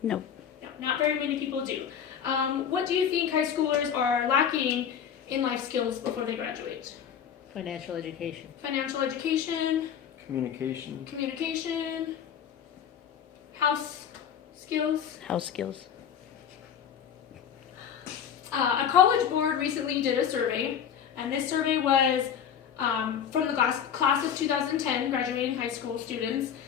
No, not very many people do. What do you think high schoolers are lacking in life skills before they graduate? Financial education. Financial education, Communication. communication, house skills. House skills. A college board recently did a survey, and this survey was from the class of 2010 graduating high school students.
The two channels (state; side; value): quieter; right; 8.4 dB